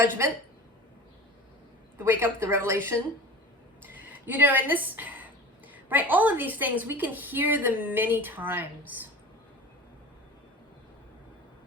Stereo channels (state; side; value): normal; both; correlation 0.36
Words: the wake up, the revelation. You know, in this, right, all of these things, we can hear them many times.